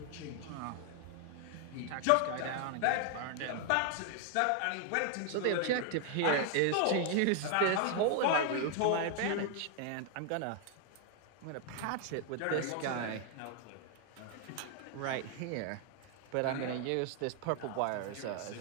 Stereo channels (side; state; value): both; different; correlation 0.00